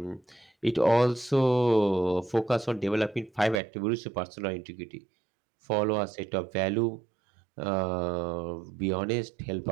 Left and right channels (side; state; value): left; drops out; at 3.6 s